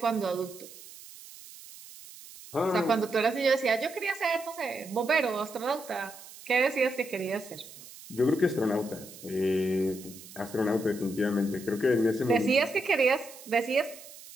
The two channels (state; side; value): noise; right; hiss, 17 dB below the sound